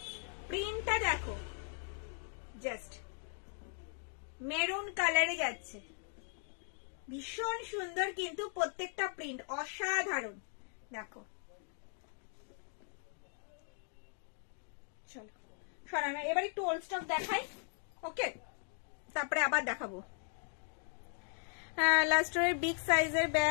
প্রিন্টটা দেখো, জাস্ট মেরুন কালারে যাচ্ছে, ভীষণ সুন্দর কিন্তু প্রত্যেকটা প্রিন্ট অসাধারণ। দেখো চলো সরানো, এবার একটু ওল্ড স্টক দেখাই, ওকে, তারপরে আবার দেখাবো। লাস্টের বিগ সাইজের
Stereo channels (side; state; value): right; silent; 52 dB below the other